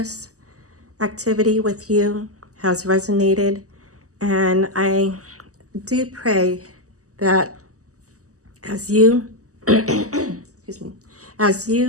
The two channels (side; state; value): left; late; 0.66 ms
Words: activity with you has resonated, and I do pray that as you excuse me, as